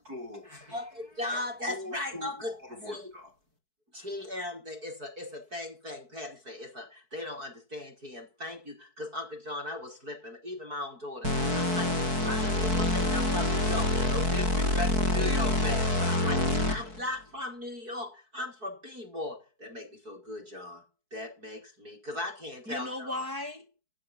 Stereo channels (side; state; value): left; late; 4.6 ms